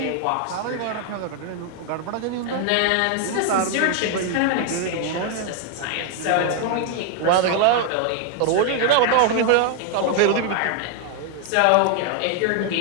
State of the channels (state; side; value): different; both; correlation 0.00